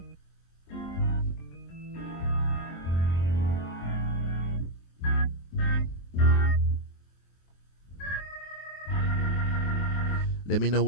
Let me know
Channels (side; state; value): right; late; 23 ms